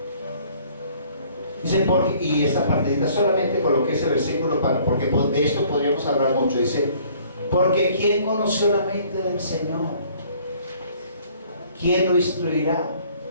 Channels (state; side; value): inverted; both; correlation -0.57